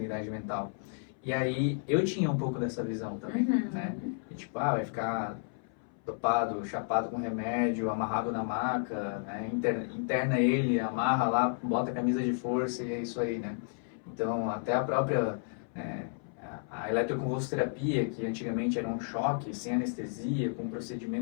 mental. E aí, eu tinha um pouco dessa visão também, né? E, tipo, vai ficar dopado, chapado com remédio, amarrado na maca, né? Interna ele, amarra lá, bota a camisa de força e é isso aí, né? Então, até a própria a eletroconvulsoterapia, que antigamente era um choque, sem anestesia, com um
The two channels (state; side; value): silent; right; 56 dB below the other